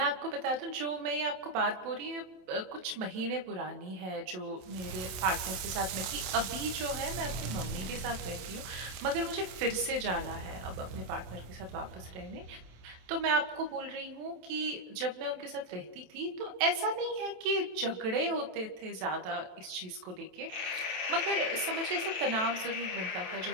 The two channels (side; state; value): left; late; 27 ms